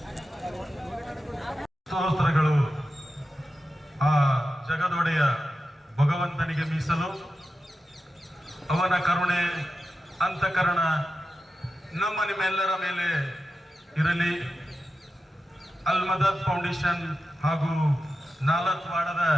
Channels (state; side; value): normal; both; correlation 0.91